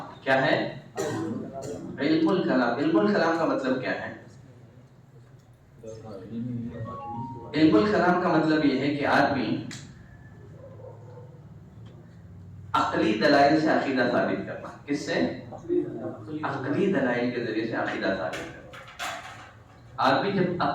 کیا ہے؟ علم الکلام. علم الکلام کا مطلب کیا ہے؟ علم الکلام کا مطلب یہ ہے کہ آدمی عقلی دلائل سے عقیدہ ثابت کرنا. کس سے؟ عقلی دلائل کے ذریعے سے عقیدہ ثابت کرنا. آدمی جب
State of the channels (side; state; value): both; identical; correlation 1.00